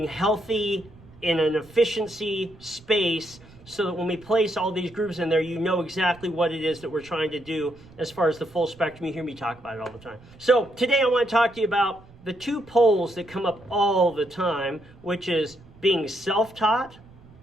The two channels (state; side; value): noise; right; rumble, 24 dB below the sound